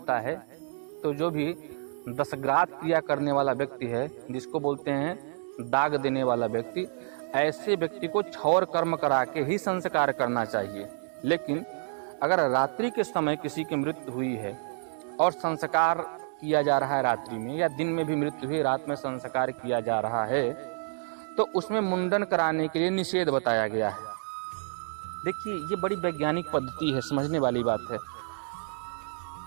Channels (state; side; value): silent; left; digital silence